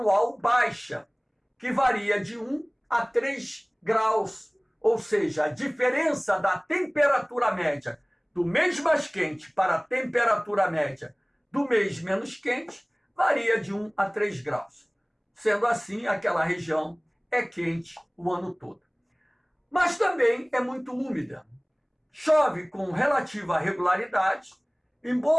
baixa, que varia de 1 a 3 graus, ou seja, a diferença da temperatura média do mês mais quente para a temperatura média do mês menos quente varia de 1 a 3 graus. Sendo assim, aquela região é quente o ano todo. Mas também é muito úmida. Chove com relativa regularidade em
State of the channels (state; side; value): identical; both; correlation 1.00